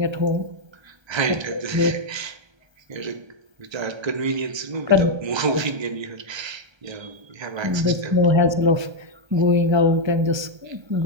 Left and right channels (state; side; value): late; left; 1.3 ms